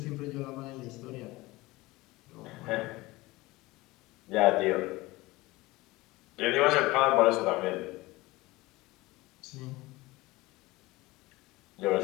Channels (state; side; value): quieter; right; 20.6 dB